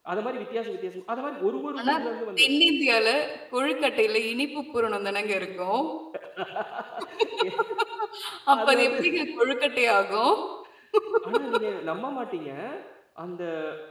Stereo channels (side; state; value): both; identical; correlation 1.00